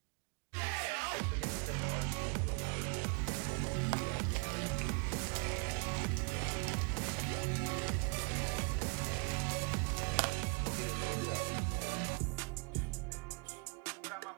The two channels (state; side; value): quieter; left; 31.2 dB